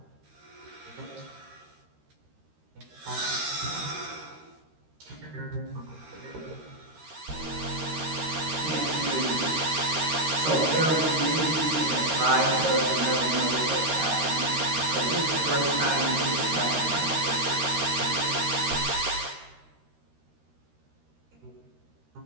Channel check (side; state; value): left; late; 13 ms